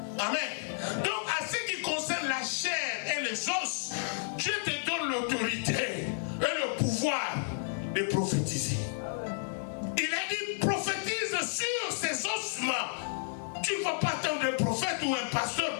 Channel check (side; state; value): right; silent; digital silence